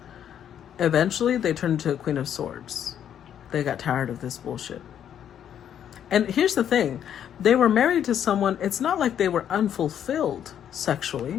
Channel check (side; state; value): right; quieter; 9.6 dB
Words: eventually they turned into a Queen of Swords. They got tired of this bullshit. And here's the thing. They were married to someone, it's not like they were unfulfilled